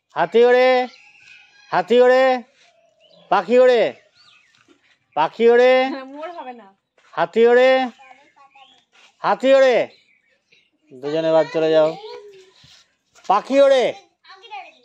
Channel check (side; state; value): both; identical; correlation 1.00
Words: হাতি ওড়ে, হাতি ওড়ে, পাখি ওড়ে, পাখি ওড়ে, মোর হবে না। হাতি ওড়ে, হাতি ওড়ে। দুজনে বাদ চলে যাও। পাখি ওড়ে,